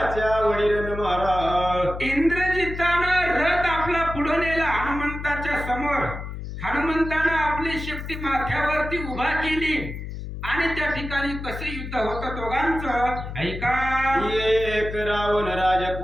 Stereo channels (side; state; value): left; noise; hum, 8 dB below the sound